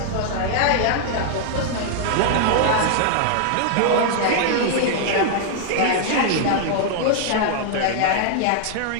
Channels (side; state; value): both; different; correlation -0.01